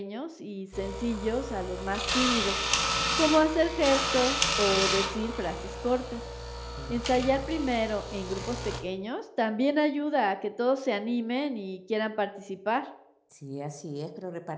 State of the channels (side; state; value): both; identical; correlation 1.00